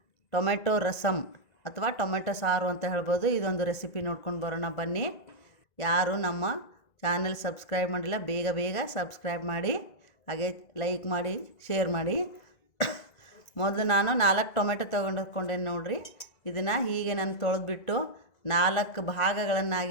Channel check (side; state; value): right; late; 2.0 ms